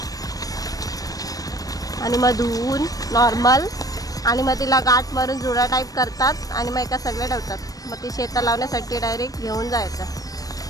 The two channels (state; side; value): late; right; 0.18 ms